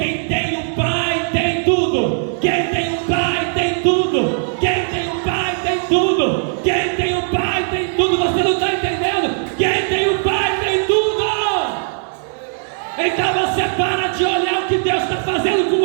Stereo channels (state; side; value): silent; left; 67 dB below the other